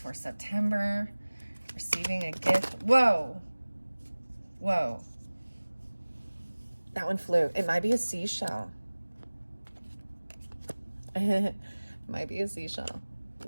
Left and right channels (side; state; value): both; inverted; correlation -1.00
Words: for September. Receiving a gift. Whoa. Whoa. That one flew. It might be a seashell. It might be a seashell.